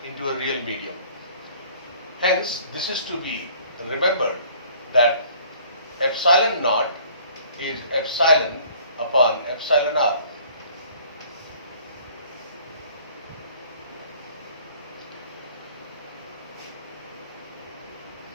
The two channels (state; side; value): inverted; both; correlation -0.54